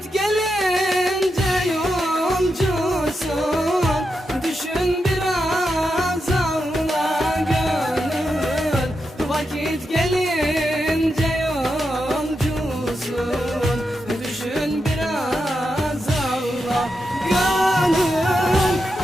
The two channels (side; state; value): both; normal; correlation 0.87